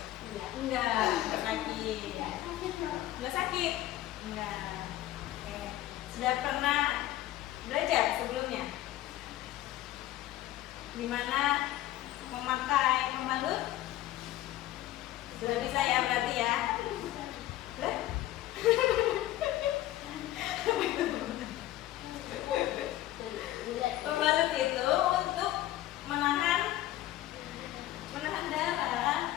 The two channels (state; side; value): quieter; right; 14.7 dB